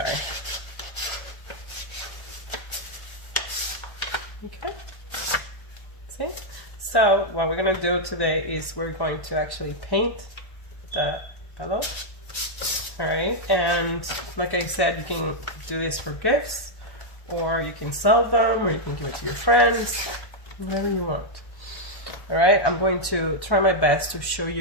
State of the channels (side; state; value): right; late; 1.1 ms